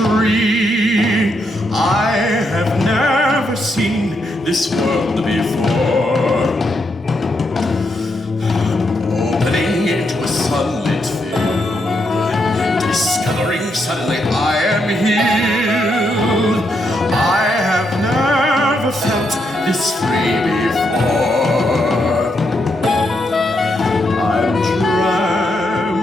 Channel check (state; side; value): normal; both; correlation 0.80